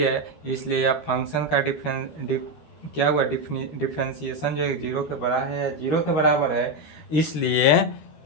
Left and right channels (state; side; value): late; right; 13 ms